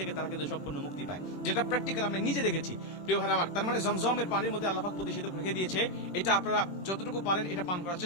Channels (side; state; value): right; late; 21 ms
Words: তারা কিন্তু সম্পূর্ণ মুক্তি পায়, যেটা প্র্যাকটিক্যাল আমি নিজে দেখেছি। প্রিয় ভাই আমার, তার মানে জমজমের পানির মধ্যে আল্লাহ পাক প্রতিষেধক রেখে দিয়েছে। এটা আপনারা যতটুকু পারেন এটা পান করার